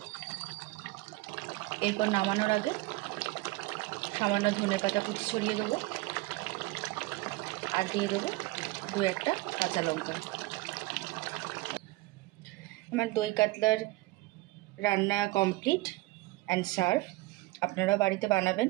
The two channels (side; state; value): left; quieter; 20.9 dB